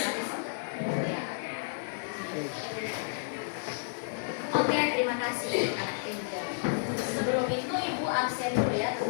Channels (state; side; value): silent; right; digital silence